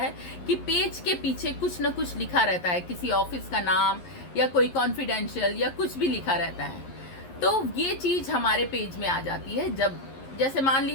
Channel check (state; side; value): late; right; 11 ms